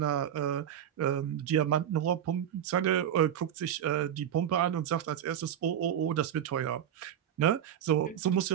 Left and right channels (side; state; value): left; quieter; 9.9 dB